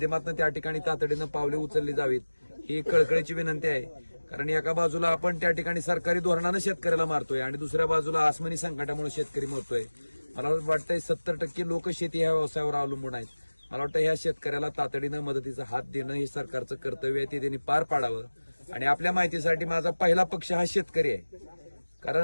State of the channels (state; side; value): inverted; both; correlation -1.00